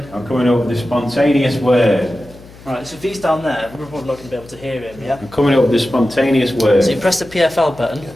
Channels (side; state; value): left; noise; hum, 21 dB below the sound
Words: I'm coming up with a spontaneous word. Right, so if he's down there, we're probably not going to be able to hear him, yeah? I'm coming up with a spontaneous word. So you press the PFL button, Yeah.